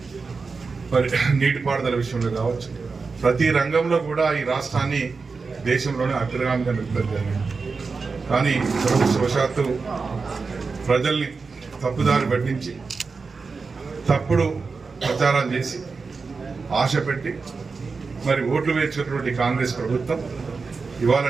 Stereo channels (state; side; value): quieter; left; 4.6 dB